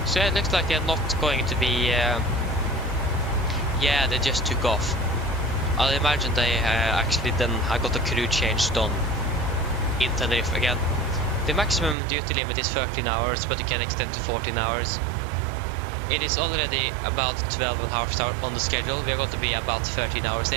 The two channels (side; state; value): left; drops out; at 12.0 s